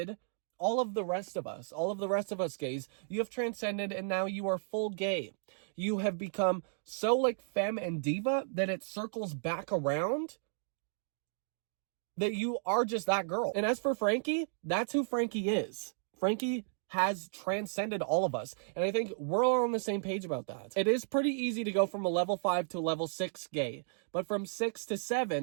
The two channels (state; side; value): silent; left; digital silence